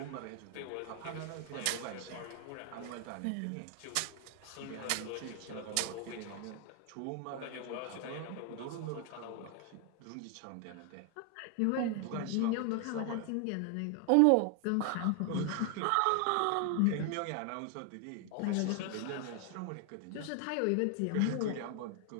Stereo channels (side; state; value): both; different; correlation 0.00